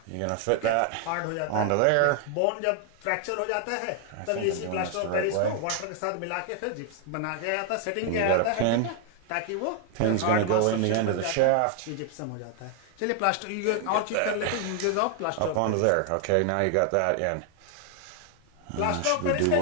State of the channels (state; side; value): different; both; correlation 0.00